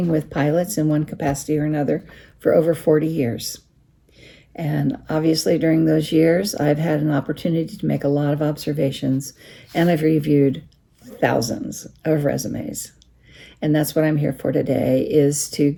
with pilots in one capacity or another for over 40 years. And obviously, during those years, I've had an opportunity to make a lot of observations, and I've reviewed thousands of resumes. And that's what I'm here for today, is to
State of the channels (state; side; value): identical; both; correlation 1.00